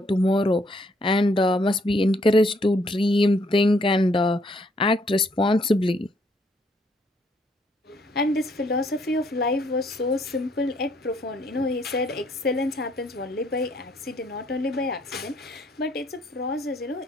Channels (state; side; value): normal; both; correlation 0.68